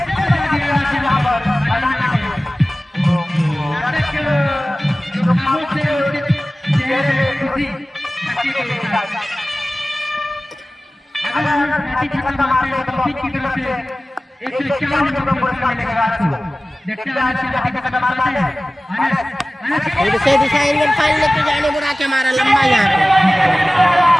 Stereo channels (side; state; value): both; normal; correlation 0.97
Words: फिर से दिशाहीन गेंद फाइल लेके जाने बुढ़ा के मारा लंबा यहाँ पे,